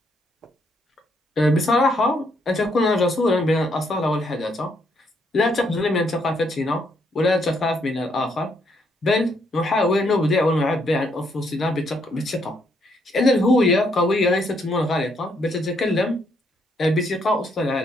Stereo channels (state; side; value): normal; both; correlation 0.73